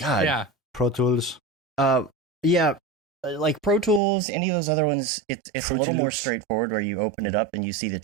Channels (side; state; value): left; drops out; at 4.0 s